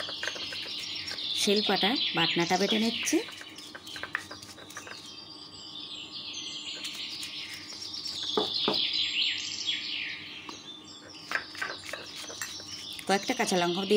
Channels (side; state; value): both; identical; correlation 1.00